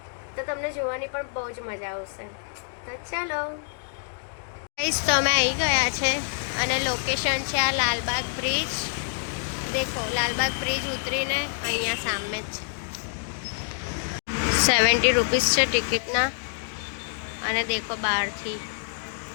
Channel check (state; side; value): silent; right; digital silence